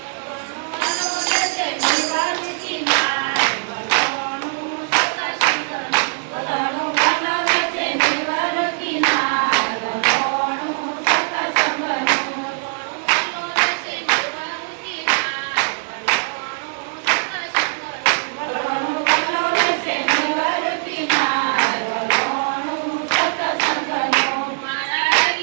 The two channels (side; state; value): left; silent; 62 dB below the other